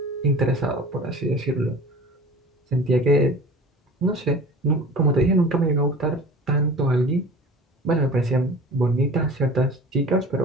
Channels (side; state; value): both; normal; correlation 0.40